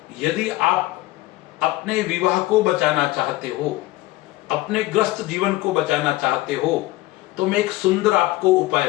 यदि आप अपने विवाह को बचाना चाहते हो, अपने ग्रस्त जीवन को बचाना चाहते हो, तो मैं एक सुंदर आपको उपाय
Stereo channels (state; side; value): quieter; right; 18.0 dB